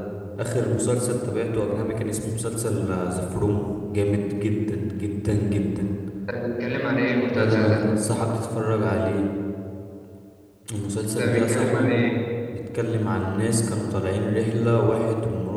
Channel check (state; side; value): identical; both; correlation 1.00